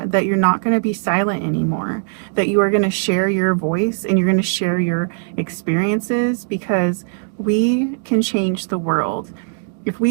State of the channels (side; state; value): left; silent; digital silence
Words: that you're not going to be silent anymore, that you are going to share your voice and you're going to share your experiences, because we can change the world. If